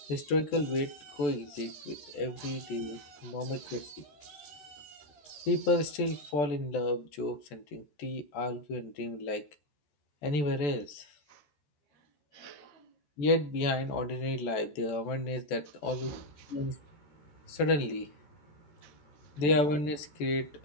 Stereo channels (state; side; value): late; right; 14 ms